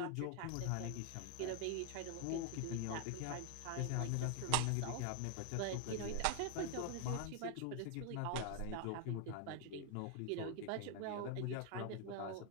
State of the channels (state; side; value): different; both; correlation 0.01